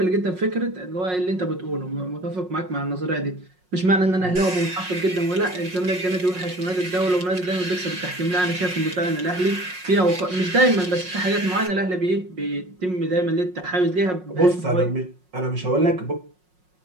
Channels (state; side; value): late; left; 5.5 ms